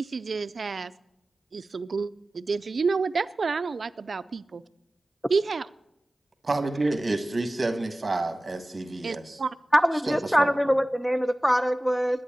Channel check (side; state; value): both; normal; correlation 0.97